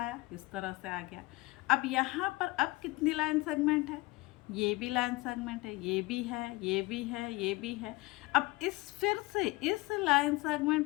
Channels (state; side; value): quieter; right; 21.6 dB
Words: इस तरह से आ गया। अब यहाँ पर अब कितनी लाइन सेगमेंट है, ये भी लाइन सेगमेंट है, ये भी है, ये भी है, ये भी है। अब फिर से इस लाइन